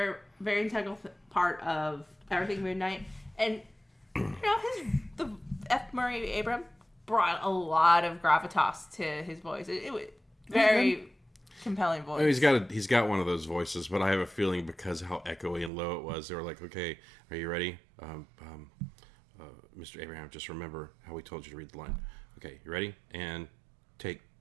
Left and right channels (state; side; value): drops out; left; at 15.7 s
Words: very integral part of everything Moon Knight. And, the F. Murray Abraham brought a lot of gravitas to his voice. It was very compelling voice. He's got one of those voices, but I have a feeling because of how echoey and low it was, they were like, "Okay, are you ready, Mr. Abraham? Just remember how we told you to read the line. Okay, you ready? And take